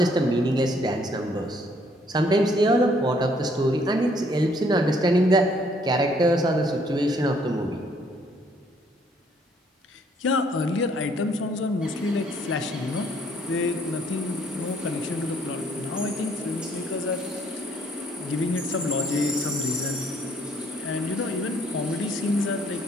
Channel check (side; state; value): both; normal; correlation 0.65